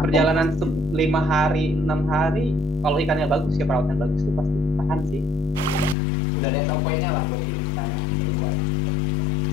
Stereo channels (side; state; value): right; drops out; at 6.0 s